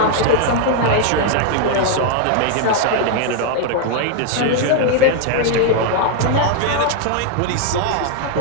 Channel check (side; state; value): both; different; correlation 0.00